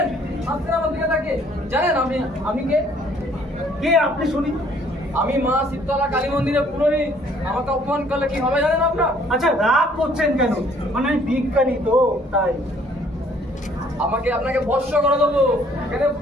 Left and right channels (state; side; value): normal; both; correlation 0.60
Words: আসছেন আমার দিকে তাকে। জানেন আমি আমি কে? কে আপনি শুনি? আমি মা শীতলা কালী মন্দিরের পুরোহিত। আমাকে অপমান করলে কি হবে জানেন আপনার? আচ্ছা, রাগ করছেন কেন? মানে আমি বিজ্ঞানী তো, তাই। আপনাকে ভস্য করে দেবো, এখানে